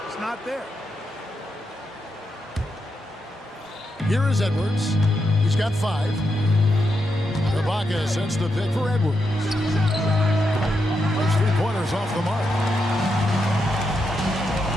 It's not there. Here is Edwards. He's got 5. Ibaka sends the pick for Edwards. Those 3-pointers off the mark.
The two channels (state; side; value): normal; both; correlation 0.84